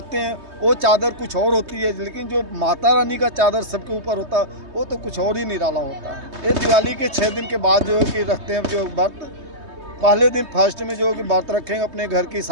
हैं वो चादर कुछ और होती है, लेकिन जो माता रानी का चादर सबके ऊपर होता है वो तो कुछ और ही निराला होता है। ये दिवाली के 6 दिन के बाद जो है कि रखते हैं जो व्रत। पहले दिन फर्स्ट में जो है कि व्रत रखेंगे, अपने घर की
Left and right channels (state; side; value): late; left; 3.2 ms